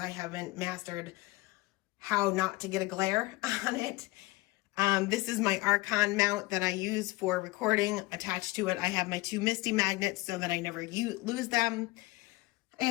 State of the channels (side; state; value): right; quieter; 21.4 dB